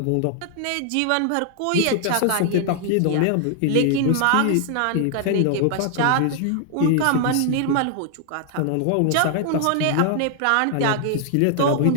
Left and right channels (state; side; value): different; both; correlation 0.00